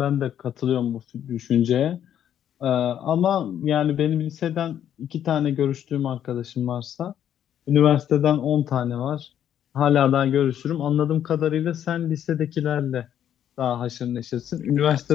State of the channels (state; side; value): quieter; right; 10.1 dB